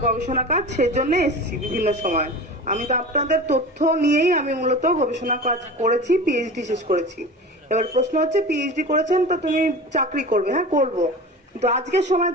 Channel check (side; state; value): both; normal; correlation 0.34